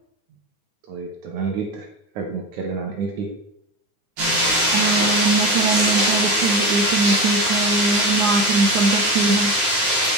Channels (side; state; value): left; late; 9.6 ms